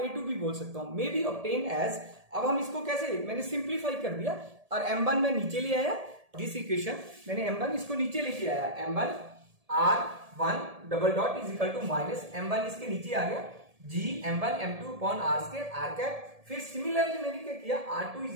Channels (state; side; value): late; left; 1.7 ms